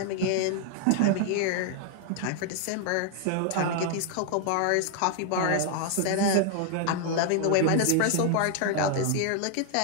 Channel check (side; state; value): both; different; correlation 0.00